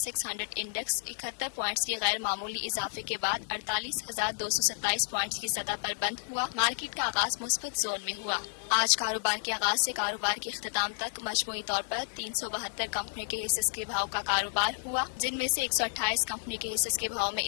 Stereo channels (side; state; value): right; silent; digital silence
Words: 100 इंडेक्स 71 पॉइंट्स के गैर मामूली इजाफे के बाद 48,227 पॉइंट्स की सतह पर बंद हुआ। मार्केट का आगाज मुस्बत जोन में हुआ। आज कारोबार के आगाज से कारोबार के इख्तिताम तक मजमूई तौर पर 372 कंपनियों के हिस्से के भाव का कारोबार हुआ, जिनमें से 128 कंपनियों के हिस्से के भाव में